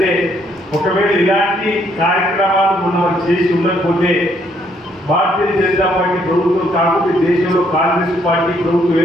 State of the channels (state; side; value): normal; both; correlation 0.70